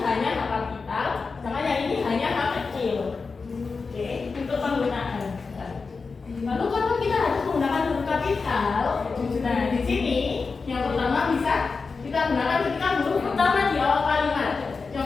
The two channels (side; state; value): right; quieter; 4.6 dB